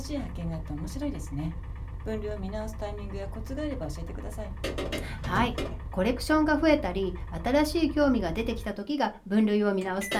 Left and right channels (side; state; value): both; identical; correlation 1.00